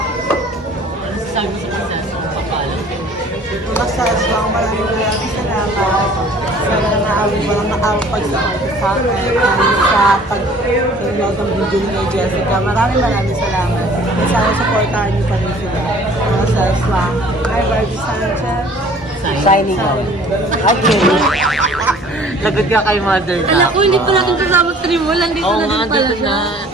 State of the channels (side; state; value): both; normal; correlation 0.51